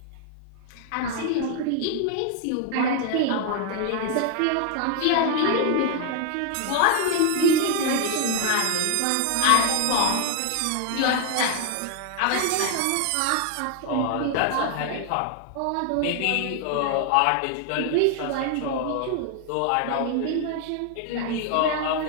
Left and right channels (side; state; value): both; different; correlation 0.01